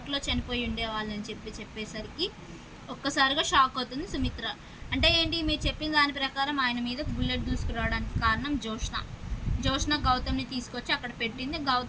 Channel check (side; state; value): both; identical; correlation 1.00